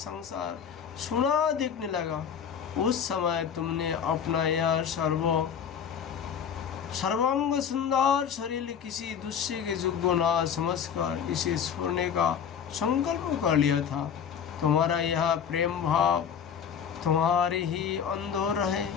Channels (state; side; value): quieter; right; 7.7 dB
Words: सुना दिखने लगा। उस समय तुमने अपना यह सर्वांग सुंदर शरीर किसी दूसरे के योग्य ना समझकर इसे छोड़ने का संकल्प कर लिया था। तुम्हारा यह प्रेम भाव तुम्हारी ही अंदर रहे,